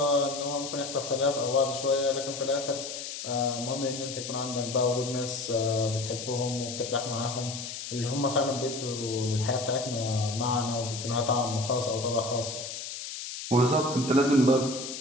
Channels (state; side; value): noise; left; hiss, 8 dB below the sound